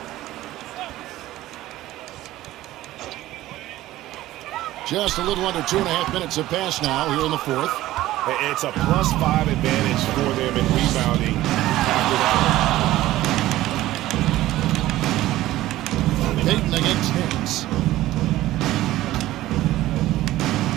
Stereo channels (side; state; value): left; quieter; 15.6 dB